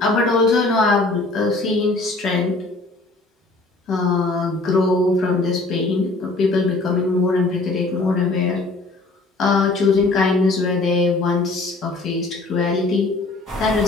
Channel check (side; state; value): right; quieter; 3.2 dB